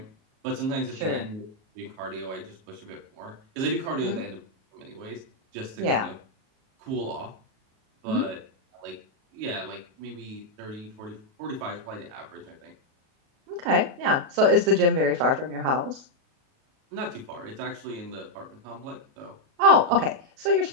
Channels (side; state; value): left; late; 37 ms